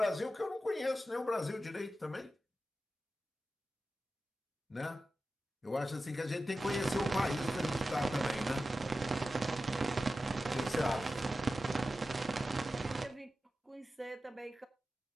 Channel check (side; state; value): both; normal; correlation 0.93